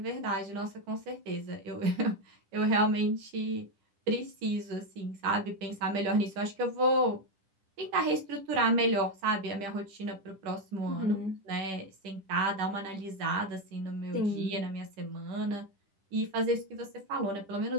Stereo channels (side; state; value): left; late; 10 ms